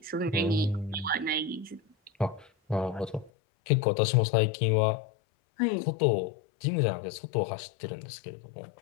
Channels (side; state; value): right; drops out; at 3.3 s